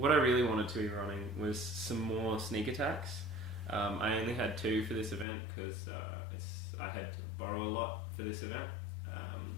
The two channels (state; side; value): drops out; right; at 5.2 s